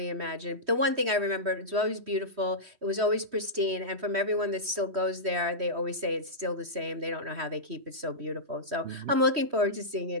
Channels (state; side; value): late; left; 3.1 ms